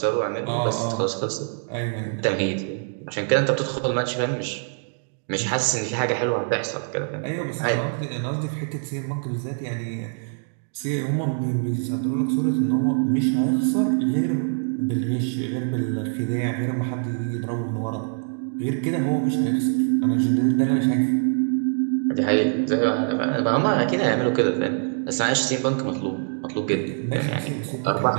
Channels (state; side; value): silent; left; digital silence